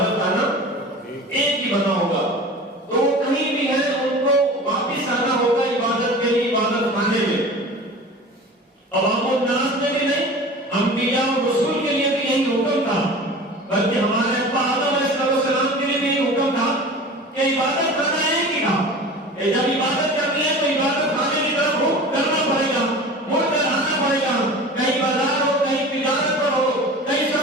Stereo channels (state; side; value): normal; both; correlation 0.37